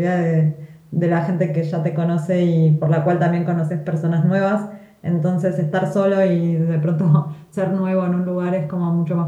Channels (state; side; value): identical; both; correlation 1.00